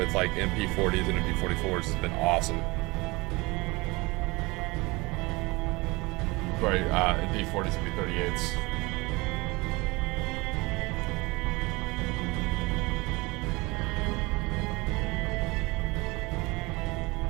like MP40s and MP44s has been awesome. Sorry, MP40s and MP38s.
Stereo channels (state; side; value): quieter; left; 24.0 dB